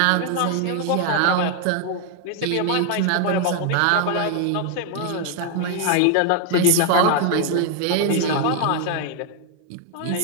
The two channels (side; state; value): both; different; correlation 0.00